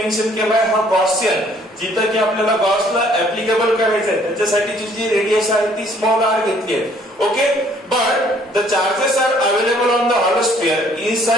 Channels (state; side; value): normal; both; correlation 0.61